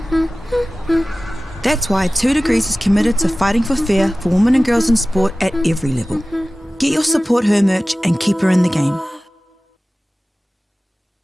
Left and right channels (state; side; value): normal; both; correlation 0.96